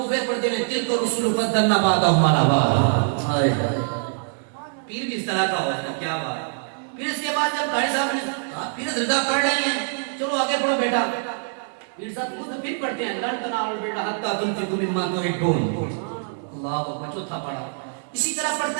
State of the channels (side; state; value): left; silent; 61 dB below the other